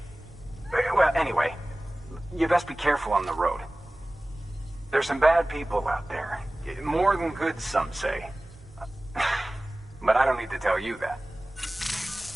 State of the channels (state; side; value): normal; both; correlation 0.98